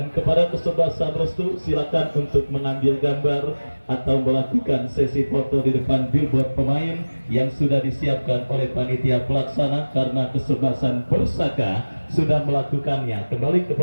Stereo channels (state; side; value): inverted; both; correlation -1.00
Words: kepada kesebelasan Restu, silakan untuk mengambil gambar atau melakukan sesi foto di depan billboard pemain yang sudah disiapkan oleh panitia pelaksana, karena kesebelasan Persaka sudah melakukannya. Kembali